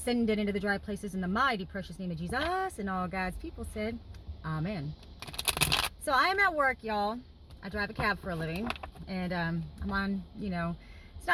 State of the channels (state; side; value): identical; both; correlation 1.00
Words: it into the dry places in the mighty, precious name of Jesus. And all God's people said, Amen. So I am at work, y'all. I drive a cab for a living, and I'm on, it's